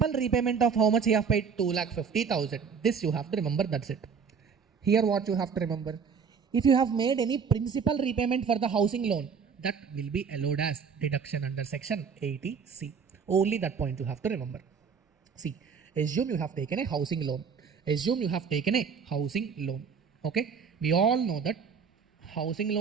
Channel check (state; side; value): quieter; left; 6.2 dB